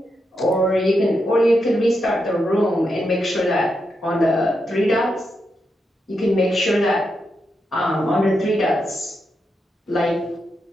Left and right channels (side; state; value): both; normal; correlation 0.85